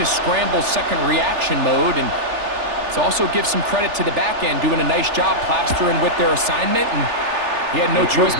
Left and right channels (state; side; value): late; left; 3.4 ms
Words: scramble second reaction mode, and it also gives some credit to the back end doing a nice job plastering with their assignment, and he had no choice